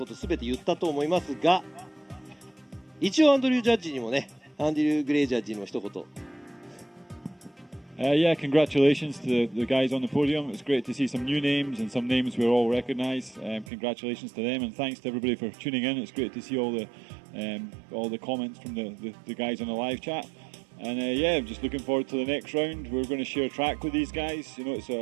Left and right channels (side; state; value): left; drops out; at 13.7 s